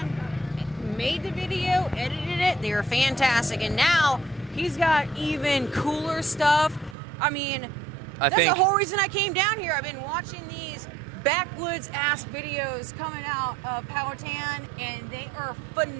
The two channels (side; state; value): left; drops out; at 7.0 s